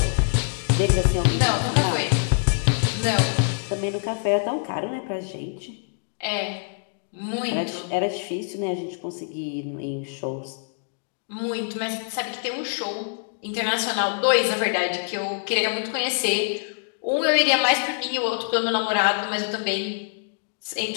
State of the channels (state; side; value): silent; right; digital silence